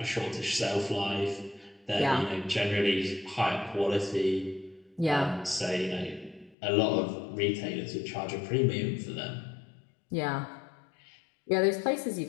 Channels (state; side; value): drops out; right; at 6.6 s